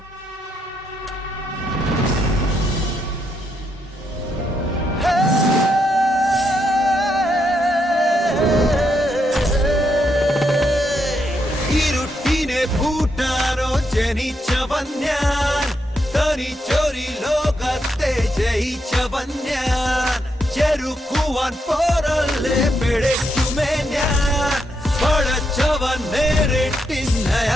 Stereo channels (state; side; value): normal; both; correlation 0.80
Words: ഇരുട്ടിനെ പൂട്ടാനോ ജനിച്ചവൻ ഞാൻ, തനിച്ചൊരു ലോകത്തെ ജയിച്ചവൻ ഞാൻ. ചെറുക്കുവാൻ പോരല്ലേ പിഴയ്ക്കുമേ ഞാൻ, പടച്ചവൻ